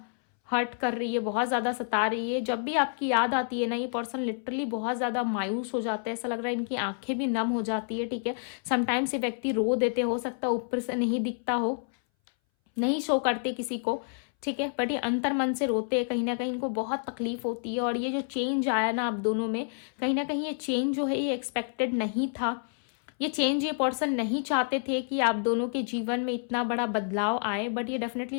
हर्ट कर रही है, बहुत ज्यादा सता रही है। जब भी आपकी याद आती है ना ये पर्सन लिटरली बहुत ज्यादा मायूस हो जाता है। ऐसा लग रहा है इनकी आंखें भी नम हो जाती है, ठीक है। समटाइम्स ये व्यक्ति रो देते, हो सकता है ऊपर से नहीं दिखता हो, नहीं शो करते किसी को, ठीक है, बट ये अंतर मन से रोते हैं। कहीं ना कहीं इनको बहुत तकलीफ होती है। और ये जो चेंज आया ना आप दोनों में, कहीं ना कहीं ये चेंज जो है ये एक्सपेक्टेड नहीं था। ये चेंज ये पर्सन नहीं चाहते थे कि आप दोनों के जीवन में इतना बड़ा बदलाव आए, बट ये डेफिनेटली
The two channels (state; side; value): silent; right; 59 dB below the other